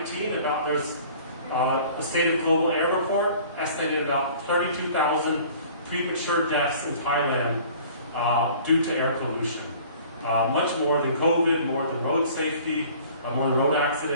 there's a State of Global Air report estimated about 32,000 premature deaths in Thailand due to air pollution. much more than COVID, more than road safety, more than road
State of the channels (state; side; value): inverted; both; correlation -0.49